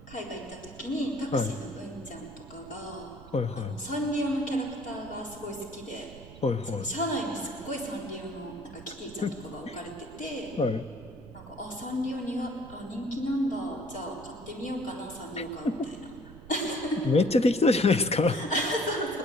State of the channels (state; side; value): noise; right; rumble, 17 dB below the sound